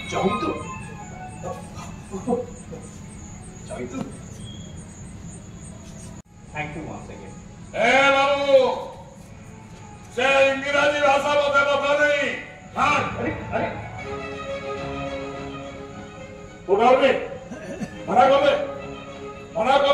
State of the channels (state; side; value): identical; both; correlation 1.00